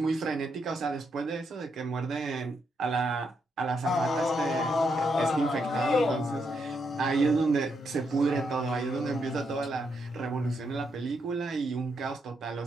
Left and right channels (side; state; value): both; normal; correlation 0.79